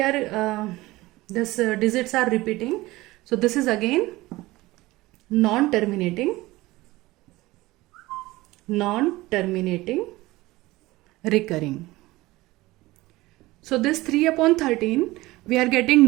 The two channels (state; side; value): quieter; left; 19.2 dB